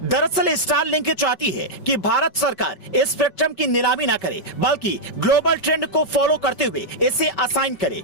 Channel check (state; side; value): late; right; 5.2 ms